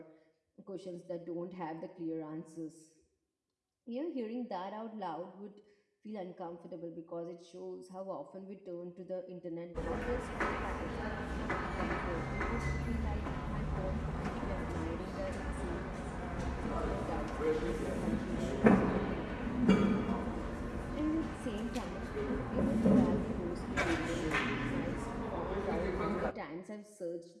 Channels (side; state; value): both; identical; correlation 1.00